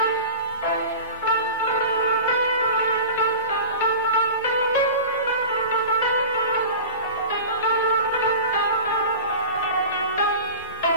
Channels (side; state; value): both; inverted; correlation -0.34